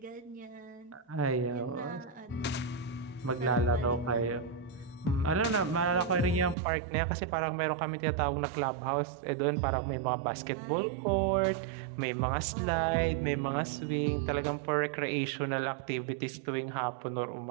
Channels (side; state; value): left; drops out; at 6.6 s